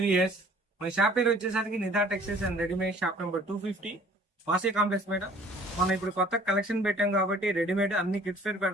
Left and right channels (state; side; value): normal; both; correlation 0.53